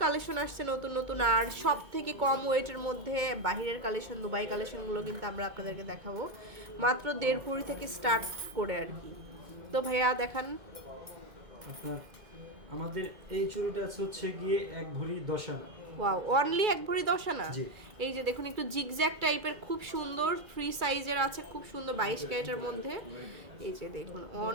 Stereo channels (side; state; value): left; late; 2.1 ms